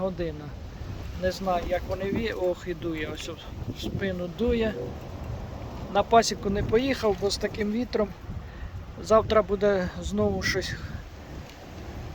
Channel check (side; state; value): both; identical; correlation 1.00